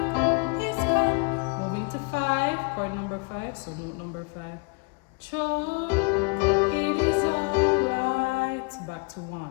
his command. Moving to 5, chord number 5, so note number 5. Cho, it is alright. Back to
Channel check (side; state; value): right; quieter; 31.7 dB